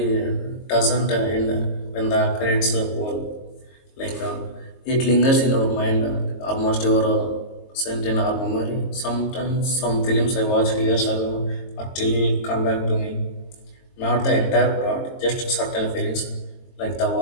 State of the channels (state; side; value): late; right; 22 ms